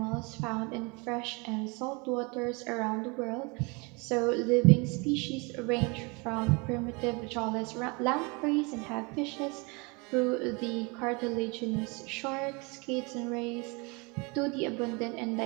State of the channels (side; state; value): left; quieter; 29.4 dB